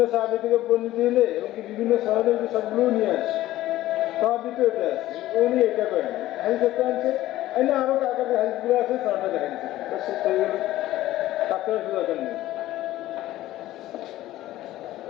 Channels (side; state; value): right; quieter; 15.2 dB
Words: সাহাবী থেকে বর্ণিত হলে এবং কি বিভিন্ন সনদের সবগুলো নিয়ে আসে, সবই তো এটা আছে, উনি এটা করেন হাদিস একটা আনছে, না আরো কাকার হাদিসগুলো আছে, সনটা দেখা দিচ্ছে, শেষ হয়ে গেল, কাকার দরকার নেই।